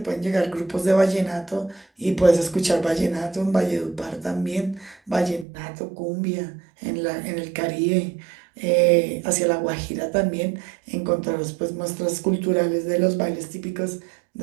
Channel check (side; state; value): left; drops out; at 5.5 s